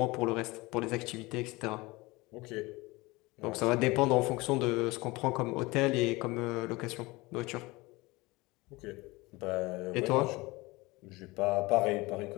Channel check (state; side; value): quieter; right; 22.5 dB